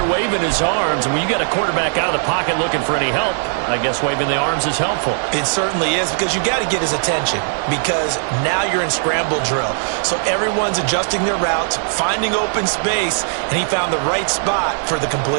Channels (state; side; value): silent; left; 65 dB below the other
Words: waving his arms. And when you got a quarterback out of the pocket looking for any help, I guess waving the arms is helpful. It certainly is because you got to get his attention because now you're in scramble drill. So everyone's adjusting their routes, finding open space, and he found the right spot for the